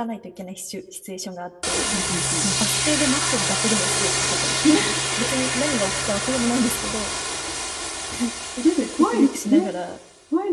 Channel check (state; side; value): identical; both; correlation 1.00